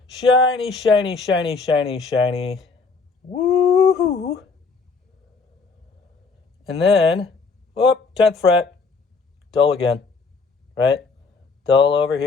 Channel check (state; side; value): quieter; right; 4.5 dB